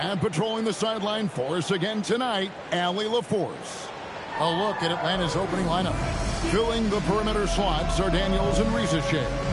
patrolling the sideline for us again tonight, Allie LaForce. A look at Atlanta's opening lineup. Filling the perimeter slots are Daniels and Risacher.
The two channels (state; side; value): identical; both; correlation 1.00